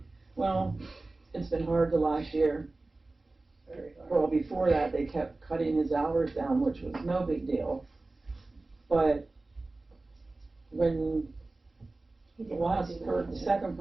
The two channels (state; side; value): quieter; left; 3.2 dB